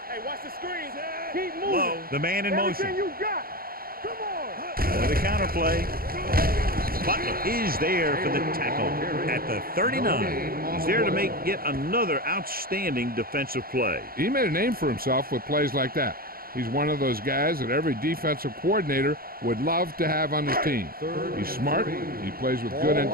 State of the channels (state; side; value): late; left; 0.43 ms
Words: Hey, watch the screen. Keep moving. Low, the man in motion. Everything you got. Come on. With a counter play. Butler is there for the tackle at the 39. He's there to make yet another outstanding defensive play. He made a name for himself with plays like that. He's one of those guys that every defensive coordinator would love to have on his team. He's smart, he plays with good